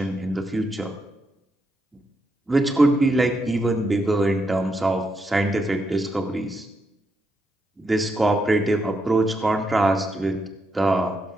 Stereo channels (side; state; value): both; normal; correlation 0.81